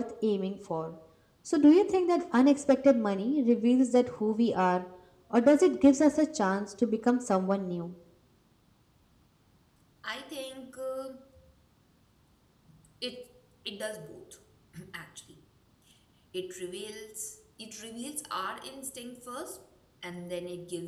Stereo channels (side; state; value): both; identical; correlation 1.00